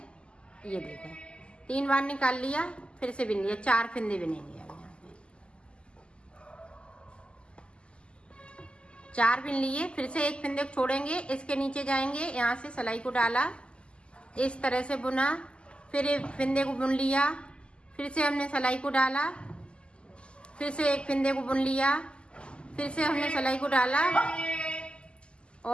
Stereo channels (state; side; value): late; right; 0.051 ms